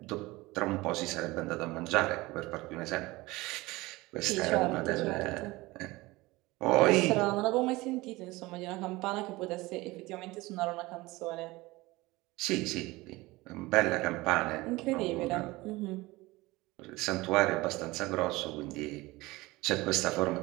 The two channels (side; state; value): left; quieter; 20.9 dB